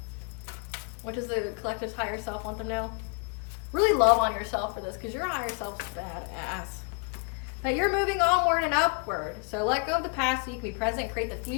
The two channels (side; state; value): right; quieter; 34.4 dB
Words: What does the collective's higher self want them to know? Really love on yourself for this, because your higher self's badass. That you're moving onward and upward. So let go of the past so you can be present and create the